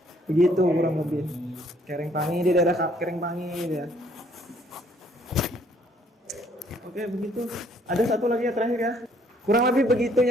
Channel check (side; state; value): both; normal; correlation 0.64